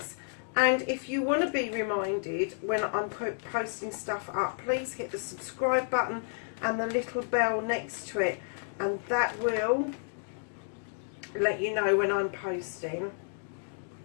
and if you want to be reminded when I'm posting stuff up, please hit the subscribe button and the little bell next to it, and that will let you know when I'm posting,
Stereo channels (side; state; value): right; silent; digital silence